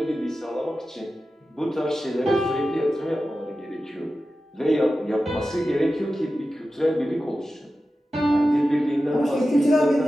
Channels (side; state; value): both; normal; correlation 0.93